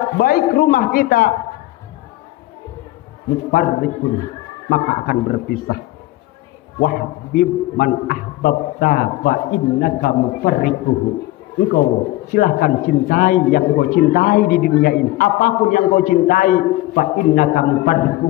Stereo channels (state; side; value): quieter; right; 17.4 dB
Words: baik rumah kita, mufarriqun, maka akan berpisah. Wahbib man ahbabta fa innaka mufarriquhu. Engkau silahkan cintai yang engkau cintai di dunia ini. Apapun yang engkau cintai, fa innaka